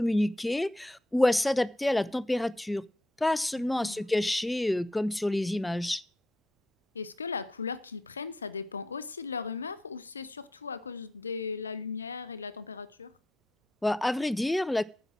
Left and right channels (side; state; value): both; normal; correlation 0.83